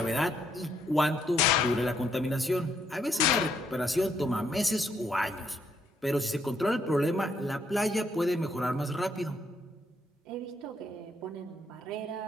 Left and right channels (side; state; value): both; normal; correlation 0.73